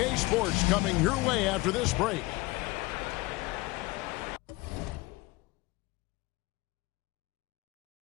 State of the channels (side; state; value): right; quieter; 21.9 dB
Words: Sports coming your way after this break.